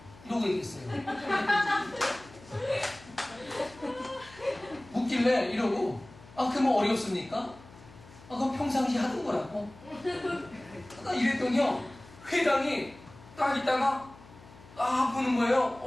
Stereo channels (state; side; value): noise; left; hum, 21 dB below the sound